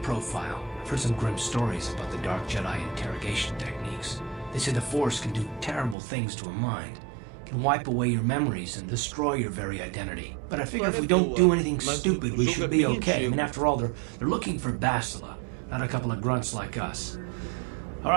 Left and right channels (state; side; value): drops out; left; at 6.0 s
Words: I've heard some grim stories about the Dark Jedi interrogation techniques. They say the Force can do terrible things to a mind. It can wipe away your memories and destroy your very identity. But I figure if we don't do anything stupid, we should be okay. I mean, after all, they're looking for Bastila. not a couple of grunts like us. All